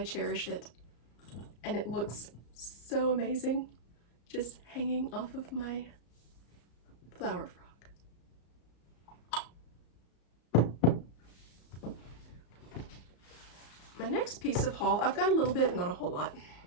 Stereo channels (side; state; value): right; late; 34 ms